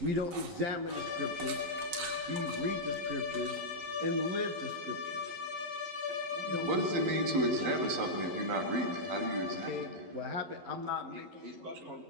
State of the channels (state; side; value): late; left; 11 ms